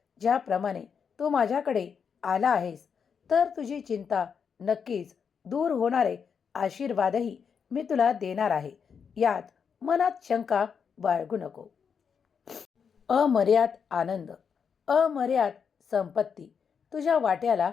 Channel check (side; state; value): right; quieter; 6.6 dB